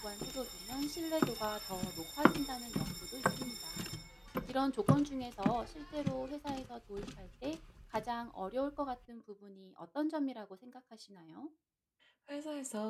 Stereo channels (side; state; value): both; identical; correlation 1.00